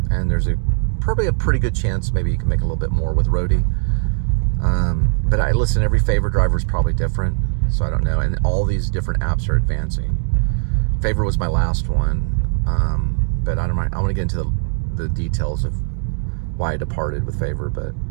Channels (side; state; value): left; silent; 66 dB below the other